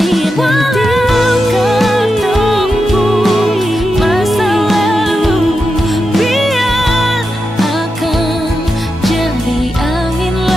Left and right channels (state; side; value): normal; both; correlation 0.88